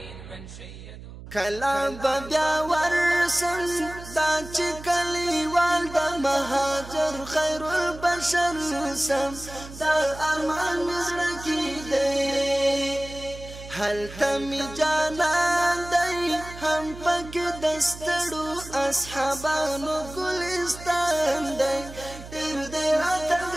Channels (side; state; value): right; noise; hum, 14 dB below the sound